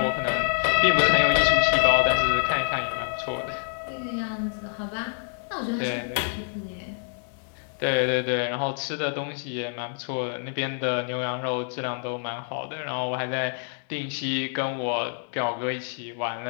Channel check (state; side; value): silent; right; 60 dB below the other